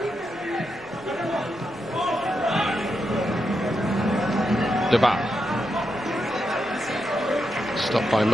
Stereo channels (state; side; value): noise; left; rumble, 26 dB below the sound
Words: Deba. Stopped by